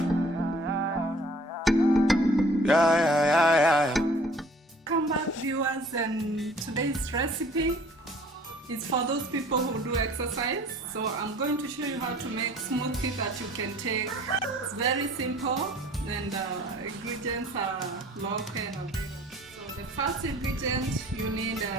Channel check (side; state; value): both; normal; correlation 0.52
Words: Yeah, yeah, yeah, yeah, yeah. Welcome back, viewers, and today's recipe is for those people who do exercise. So I'm going to show you how to make smoothie that you can take. It's very simple, and the ingredients are local and available. So the first ingredient, you need